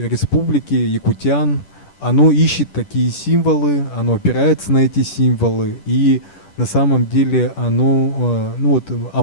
республики, якутян, оно ищет такие символы, оно опирается на эти символы, и на самом деле оно о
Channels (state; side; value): late; right; 10 ms